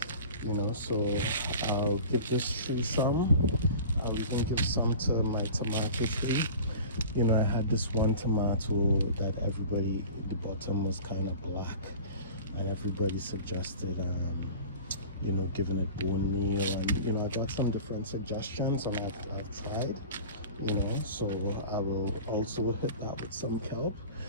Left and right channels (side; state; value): both; inverted; correlation -0.39